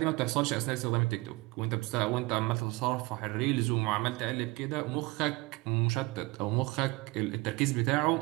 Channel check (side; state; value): left; quieter; 24.0 dB